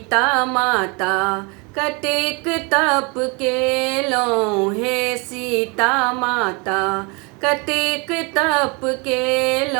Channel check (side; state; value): left; quieter; 30.0 dB